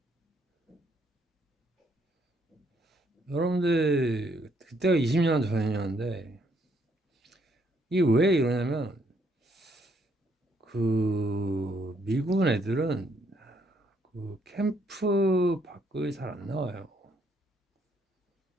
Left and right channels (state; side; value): normal; both; correlation 0.71